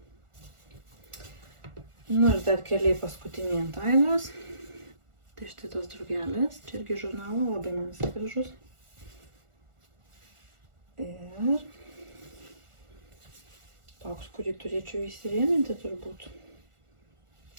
Nu ir dar keliai paskutiniai ant Ainos. Tai štai tos drugelės. Čia irgi žurnalo, labai man visai gražus. Ir toks, kurį turėčiau įsirėminti turbūt.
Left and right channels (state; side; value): late; left; 1.4 ms